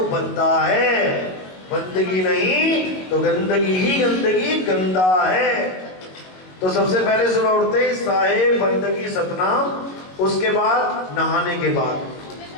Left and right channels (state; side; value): late; right; 22 ms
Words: बंदा है, बंदगी नहीं तो गंदगी ही गंदगी, गंदा है। तो सबसे पहले सुबह उठते ही साहिब बंदगी सतनाम, उसके बाद नहाने के बाद